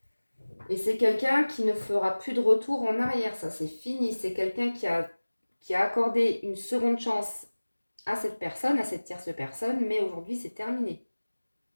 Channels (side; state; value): both; inverted; correlation -1.00